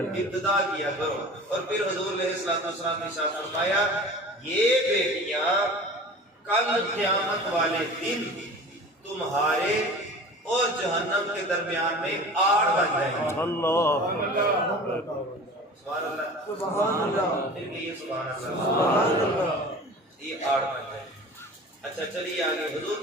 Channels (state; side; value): normal; both; correlation 0.39